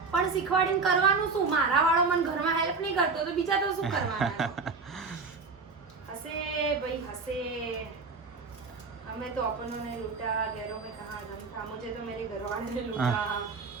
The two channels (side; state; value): left; quieter; 4.5 dB